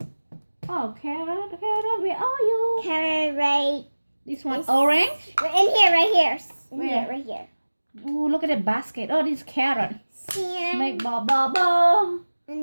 Oh, carrot, where are you? Carrot right. This one orange. In here, right here. Where? Right here. Ooh, look at the basket. Oh, this carrot. Sand. Make ball. I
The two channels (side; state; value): both; inverted; correlation -1.00